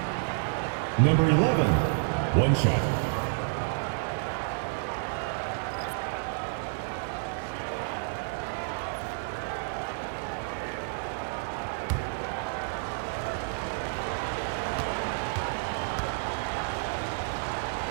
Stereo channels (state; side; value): silent; left; digital silence